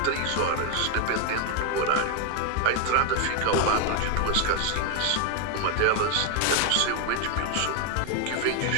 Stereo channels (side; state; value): both; different; correlation 0.01